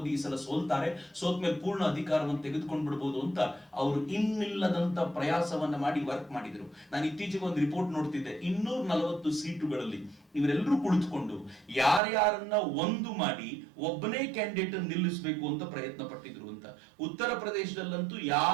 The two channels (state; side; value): drops out; left; at 12.0 s